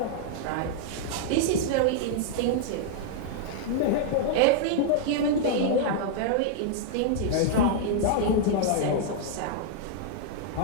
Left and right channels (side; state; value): both; different; correlation -0.01